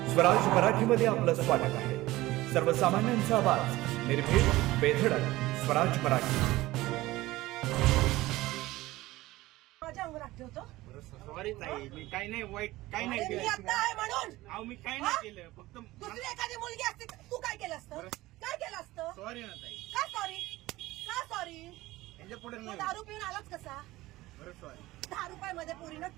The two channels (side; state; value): left; quieter; 18.1 dB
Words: स्वराज मराठीमध्ये आपलं स्वागत आहे. सर्वसामान्यांचा आवाज, निर्भीड, बेधडक, स्वराज मराठी. माझ्या अंगावर ठेवतो. सॉरी ताई, मी काही नाही वाईट, काही नाही मी केलं. आता आहे म्हणून. अहो मी काही नाही केलं, फक्त दुसरी एखादी मुलगी असती तर तू काय केलं असतं? काय केलं असतं? सॉरी ना ताई. का सॉरी? का सॉरी? यांच्या पुढे तू नाही. दारू पिऊन आलाच कसा? बरं सॉरी. 10 रुपयामध्ये पोरीनं